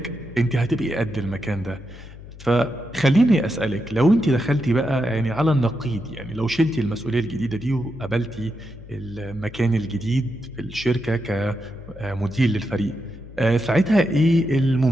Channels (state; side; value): noise; left; hum, 17 dB below the sound